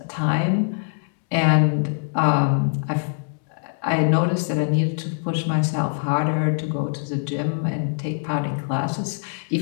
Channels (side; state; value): right; silent; 63 dB below the other